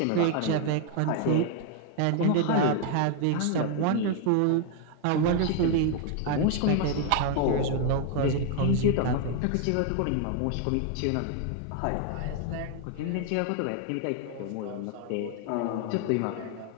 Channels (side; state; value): both; different; correlation 0.01